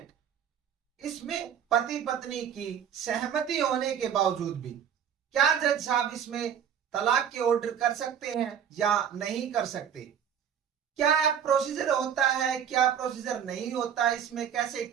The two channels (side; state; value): left; quieter; 8.6 dB